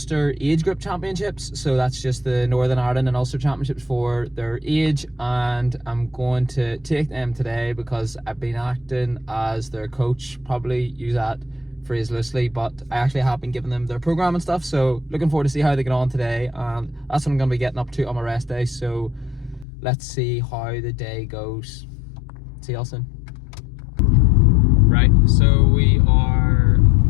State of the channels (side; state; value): right; drops out; at 19.7 s